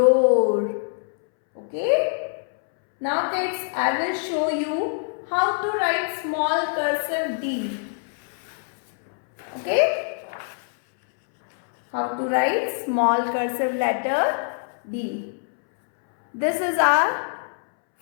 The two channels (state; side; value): silent; right; 63 dB below the other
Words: Okay? Now kids, I will show you how to write small cursive D. Okay? How to write small cursive letter D. This is our